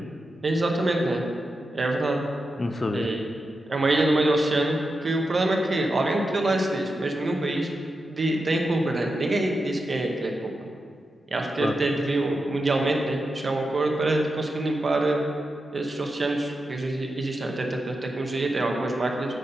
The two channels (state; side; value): normal; both; correlation 0.89